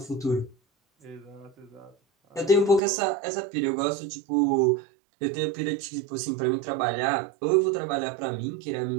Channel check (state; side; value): drops out; left; at 2.8 s